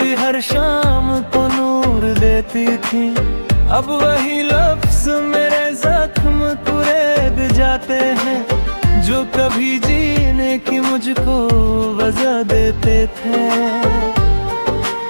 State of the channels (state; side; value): inverted; both; correlation -1.00